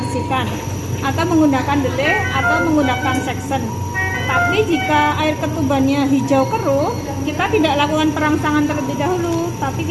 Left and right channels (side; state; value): both; identical; correlation 1.00